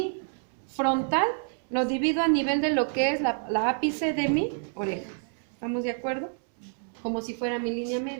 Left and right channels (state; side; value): silent; left; 59 dB below the other